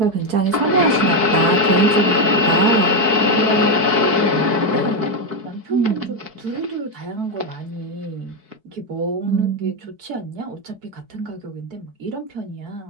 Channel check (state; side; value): late; left; 4.6 ms